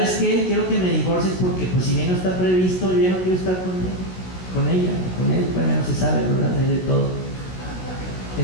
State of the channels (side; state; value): right; late; 16 ms